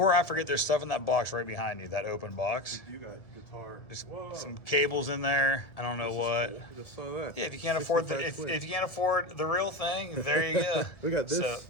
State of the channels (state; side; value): late; right; 1.8 ms